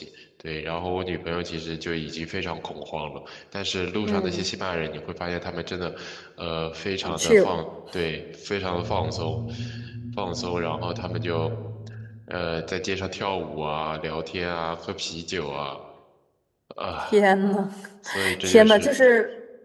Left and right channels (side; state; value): both; identical; correlation 1.00